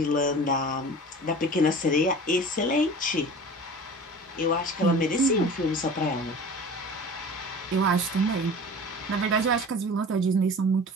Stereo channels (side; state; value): both; normal; correlation 0.39